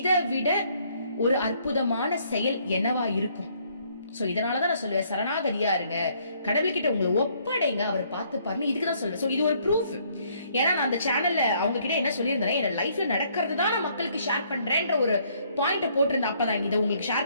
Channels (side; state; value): both; inverted; correlation -0.66